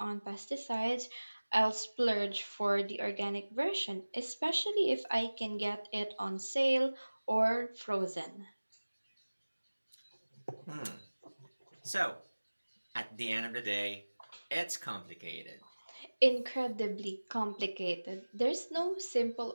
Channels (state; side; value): inverted; both; correlation -1.00